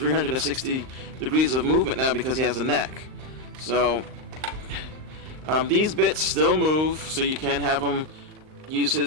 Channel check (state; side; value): late; left; 38 ms